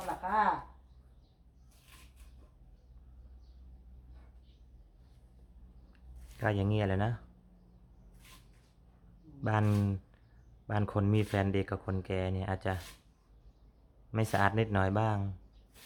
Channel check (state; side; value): identical; both; correlation 1.00